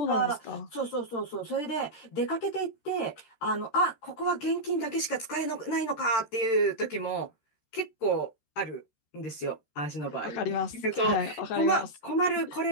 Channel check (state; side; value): late; right; 13 ms